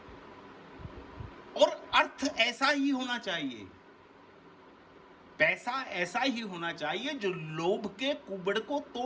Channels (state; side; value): identical; both; correlation 1.00